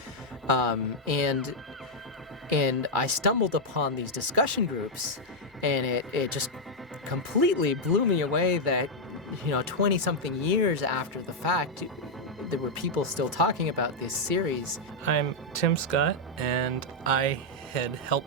And I stumbled upon these discussion groups, and it just completely blew me away that, 20-something years after the fact, there were people still talking about this series. I'm Tim Scott, and I had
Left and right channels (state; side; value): normal; both; correlation -0.02